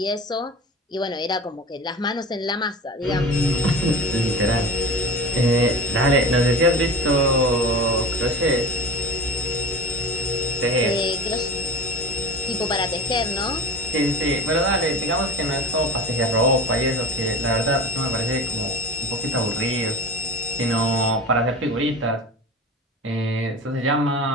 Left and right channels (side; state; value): both; normal; correlation 0.32